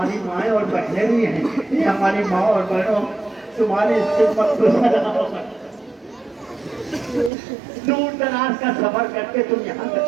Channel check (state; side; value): drops out; left; at 7.3 s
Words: माएँ और बहनें भी हैं, हमारी माँ और बहनों, तुम्हारी खिदमत को सलाम। दूर दराज का सफर करके तुम यहाँ तक